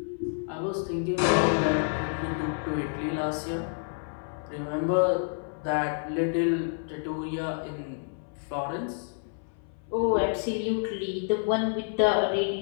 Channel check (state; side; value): silent; right; 59 dB below the other